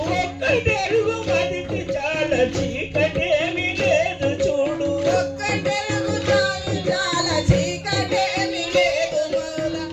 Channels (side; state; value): both; identical; correlation 1.00